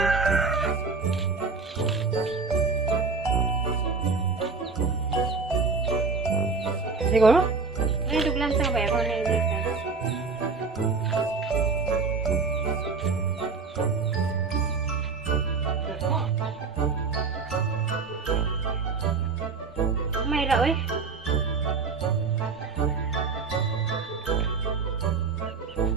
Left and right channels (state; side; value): quieter; left; 4.7 dB